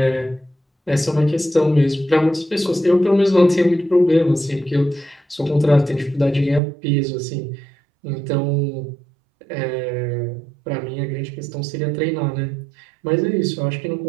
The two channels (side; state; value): left; drops out; at 6.6 s